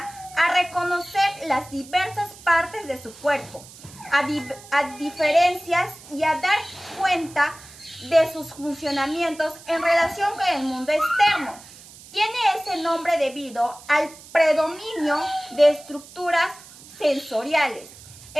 a reconocer las diversas partes de su cuerpo, a diferencias y a dar cuenta de sus funcionamientos en relación con el mundo externo. Tiene ese nombre debido al predominio de estructuras sensoriales.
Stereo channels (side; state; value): right; noise; hiss, 19 dB below the sound